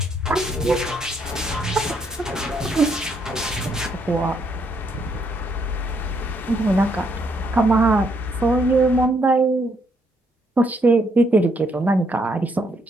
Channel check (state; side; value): normal; both; correlation 0.73